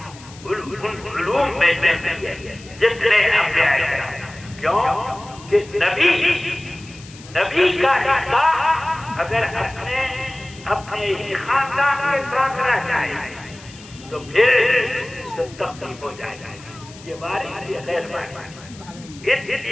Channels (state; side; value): noise; left; hiss, 20 dB below the sound